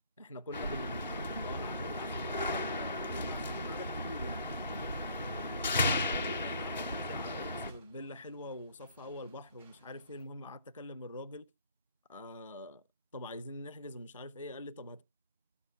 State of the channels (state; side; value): inverted; both; correlation -0.57